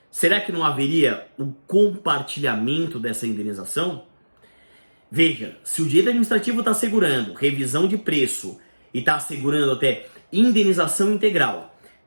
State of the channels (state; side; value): inverted; both; correlation -1.00